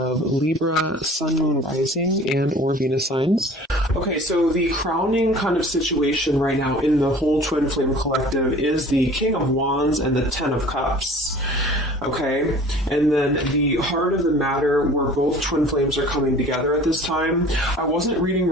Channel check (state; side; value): normal; both; correlation 0.46